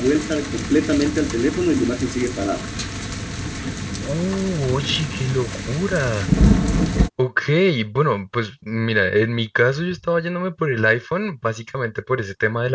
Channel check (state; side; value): identical; both; correlation 1.00